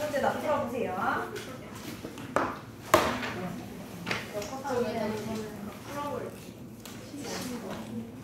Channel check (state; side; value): identical; both; correlation 1.00